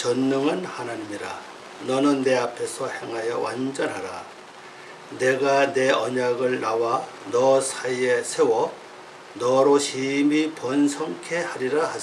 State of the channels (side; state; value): both; identical; correlation 1.00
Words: 하나님이라. 너는 내 앞에서 행하여 완전하라. 내가 내 언약을 나와 너 사이에 세워 너로 심히 번성케 하리라